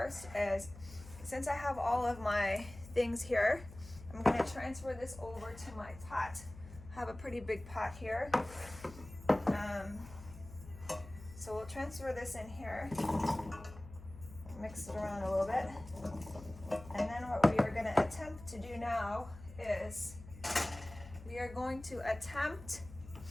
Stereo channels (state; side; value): noise; left; hum, 16 dB below the sound